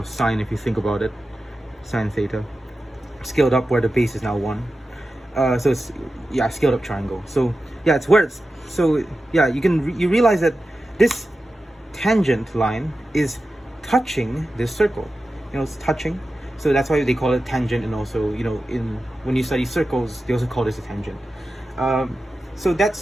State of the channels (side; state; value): both; normal; correlation 0.93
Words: sine, if you think about it. Sine theta, scaled up where the base is now 1. So it's, yeah, scaled up triangle. So yeah, it's where it's, so yeah, you realize that this tangent line is touching this circle. You know, it's touching. So that's why they call it tangent, and also, you know, when you study circles, they also call this a tangent. So